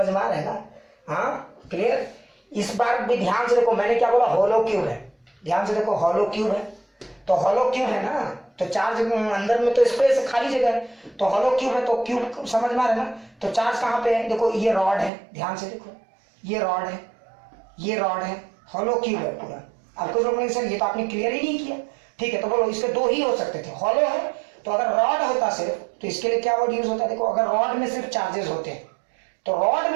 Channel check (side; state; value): left; drops out; at 15.1 s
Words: में आ रहा है ना? हाँ, क्लियर। इस बार भी ध्यान से देखो, मैंने क्या बोला? हॉलो क्यूब है, ध्यान से देखो, हॉलो क्यूब है, तो हॉलो क्यूब है ना, तो चार्ज अंदर में तो स्पेस खाली जगह है, तो हॉलो क्यूब है, तो क्यूब समझ में आ रहा है ना। तो चार्ज कहाँ पे है? देखो ये रॉड है, ध्यान से देखो, ये रॉड है, ये रॉड है, हॉलो क्यूब है पूरा। अब कुछ लोग सर ये तो आपने क्लियर ही नहीं किया, ठीक है, तो बोलो इसके दो ही हो सकते थे, हॉलो है, तो अगर रॉड होता सिर्फ, तो इसके लिए क्या वर्ड यूज होता है? देखो, अगर रॉड में सिर्फ चार्जेस होते हैं, तो रॉड